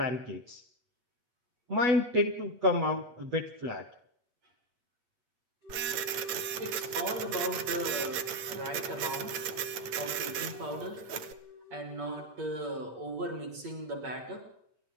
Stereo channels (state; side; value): late; left; 8.8 ms